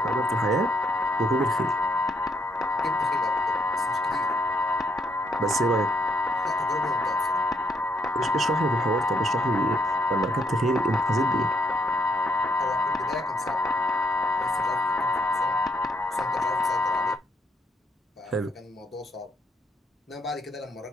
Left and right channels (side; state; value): both; normal; correlation 0.73